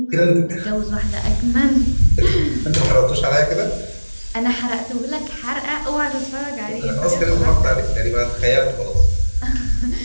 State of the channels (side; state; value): both; inverted; correlation -1.00